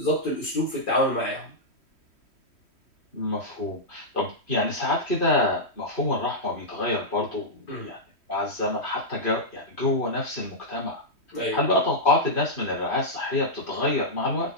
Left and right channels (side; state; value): right; late; 3.1 ms